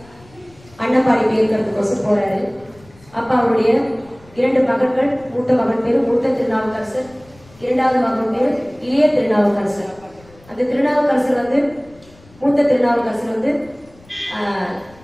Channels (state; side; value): noise; left; rumble, 26 dB below the sound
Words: அன்னப்பாடி பேருக்கிறதுக்கோசம் போறாரு. அப்ப அவருடைய 2 மகன்கள், மூத்த மகன் பேரு மூத்த திருநாவுக்கரசர், 2வது மகன் பேரு இளைய திருநாவுக்கரசர். அந்த திருநாவுக்கரசர் வந்து மூத்த திருநாவுக்கரசர் வந்து